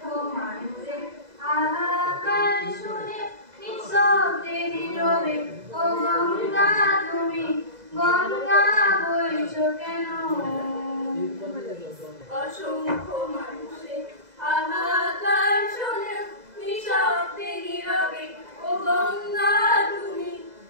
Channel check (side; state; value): left; late; 2.0 ms